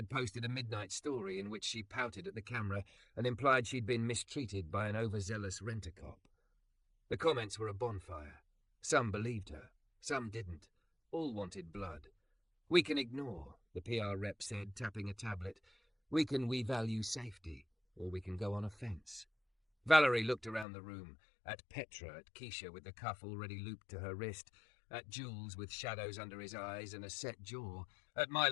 posted a midnight story in which she pouted at the camera and implied she'd been mistreated by an overzealous rent-a-cop. The comments were a bonfire. Some believed her, some didn't. All wanted blood. "We can ignore," the PR rep said, tapping a tablet. "We value safety, or we can go on offence." Valerie looked around the room, at Petra, at Keisha with the cuff already looped to her wrist, at Jules with shadows under his eyes and a set jaw, at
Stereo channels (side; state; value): right; drops out; at 20.7 s